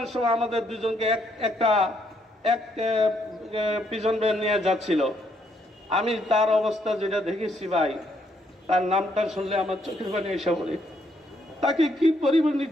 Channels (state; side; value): normal; both; correlation 0.73